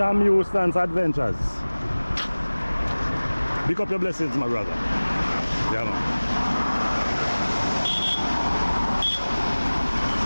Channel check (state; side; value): inverted; both; correlation -1.00